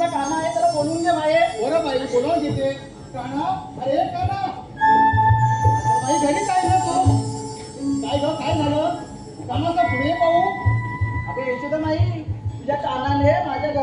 काना आहे, त्याला बोलून घे बाहेर. बरं बाई, बोलावून घेते. काना, अरे काना, आता बाई घरीच आहे ना तू? काय ग, काय झालं? कानाचा पुढे पाहू. अगं यशोदा माई, तुझ्या कानाने माझ्या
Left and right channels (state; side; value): identical; both; correlation 1.00